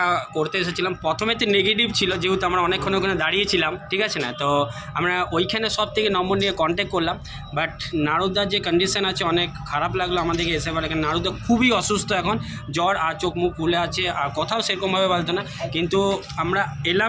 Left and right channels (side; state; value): both; identical; correlation 1.00